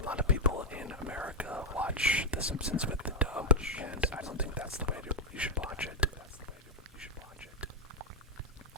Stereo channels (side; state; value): both; normal; correlation 0.01